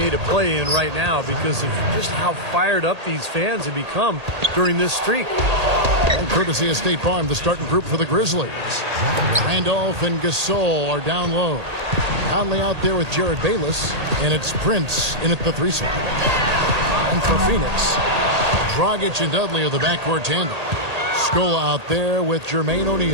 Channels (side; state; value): left; late; 1.8 ms